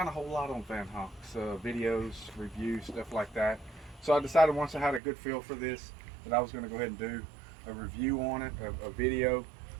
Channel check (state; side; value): drops out; left; at 5.0 s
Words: a whole lot on Vanhunks, videos, reviews, stuff like that. So I decided once I had a good feel for this that I was going to go ahead and do a review on it, a video,